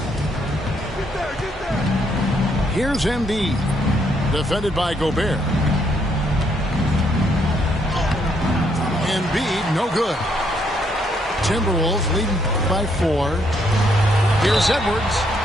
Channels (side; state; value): both; normal; correlation 0.72